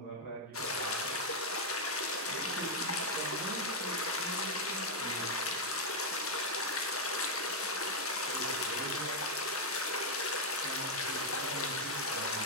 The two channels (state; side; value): normal; both; correlation -0.02